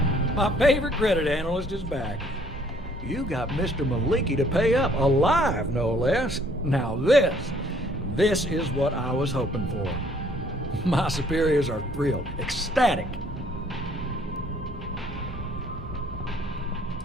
my favorite credit analyst is back. You got Mr. Maliki to pay up, alive no less. Now this is what I was hoping for. My superiors are thrilled, ecstatic.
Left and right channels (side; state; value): both; normal; correlation 0.62